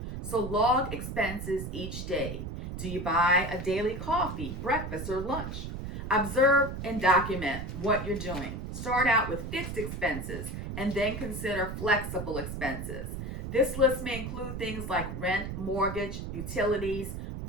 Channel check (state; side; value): noise; right; rumble, 6 dB below the sound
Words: So log expenses each day. Do you buy a daily coffee, breakfast, or lunch? Observe and document what you're doing. Start out with fixed expenses and then consider flexible expenses. This list may include things like rent, mortgage, utilities,